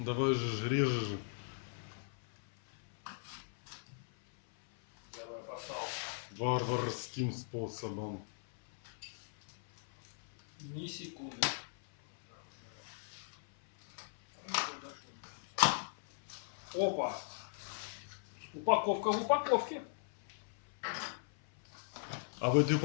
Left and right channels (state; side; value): silent; right; 52 dB below the other